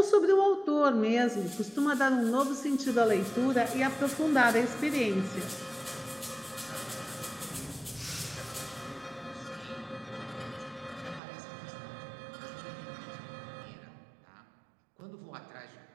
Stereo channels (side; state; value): left; drops out; at 11.2 s